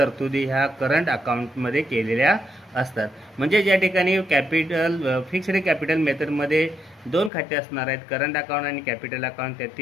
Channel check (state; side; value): drops out; right; at 7.3 s